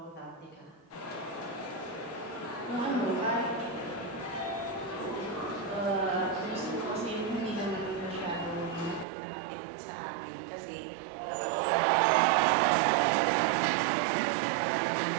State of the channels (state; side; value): drops out; left; at 9.1 s